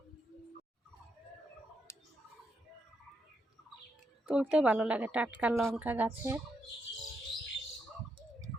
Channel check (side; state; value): both; normal; correlation 0.81